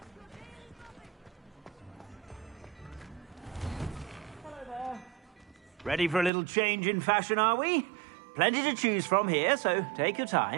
Ready for a little change in fashion, are we? Plenty to choose from here, so take your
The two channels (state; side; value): drops out; left; at 6.3 s